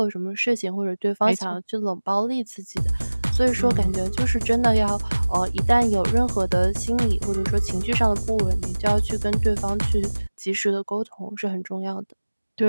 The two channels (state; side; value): inverted; both; correlation -1.00